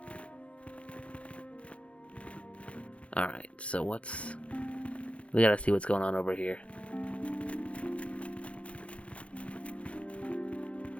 Alright, so we gotta see what's going on over here.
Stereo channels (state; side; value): late; right; 0.062 ms